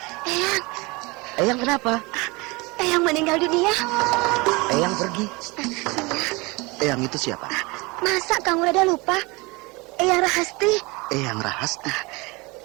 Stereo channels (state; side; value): quieter; left; 25.5 dB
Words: Eyang. Eyang kenapa? Eyang meninggal dunia. Eyang pergi. Eyang itu siapa? Masa kamu rada lupa? Eyang Rahasti. Eyang Rahasti.